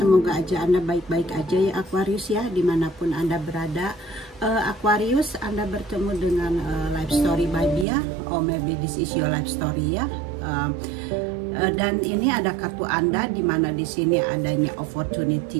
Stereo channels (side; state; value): left; drops out; at 7.9 s